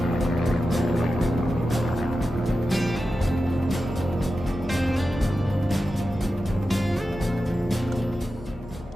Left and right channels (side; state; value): both; normal; correlation 0.92